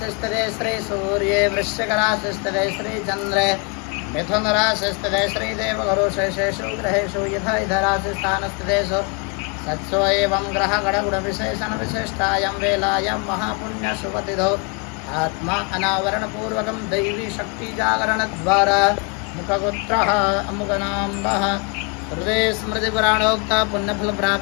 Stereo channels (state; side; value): quieter; right; 34.9 dB